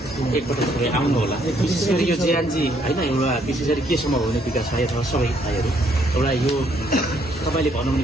एकपटक आउनु होला विशेष गरी यो जियानजी होइन एउटा विशेष गरी केसम्म हुने विकास भाइ अथवा सबै भाइहरू एउटा यो तपाईँले भन्नु भने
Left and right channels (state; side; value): normal; both; correlation 0.69